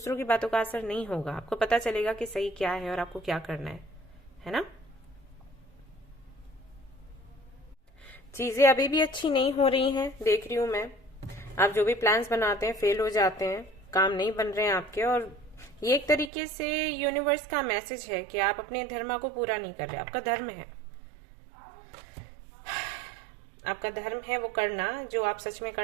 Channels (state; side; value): drops out; left; at 16.3 s